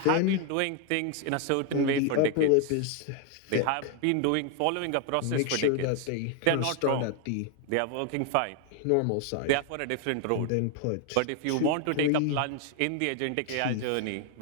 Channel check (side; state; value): both; different; correlation 0.00